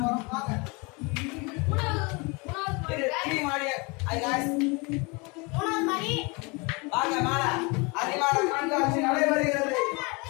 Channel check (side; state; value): right; quieter; 28.7 dB